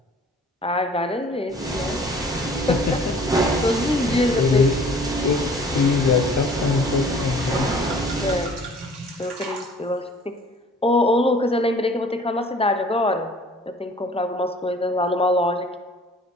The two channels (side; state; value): both; normal; correlation 0.51